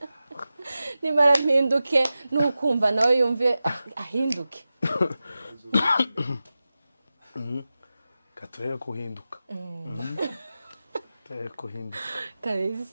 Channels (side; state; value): both; inverted; correlation -0.94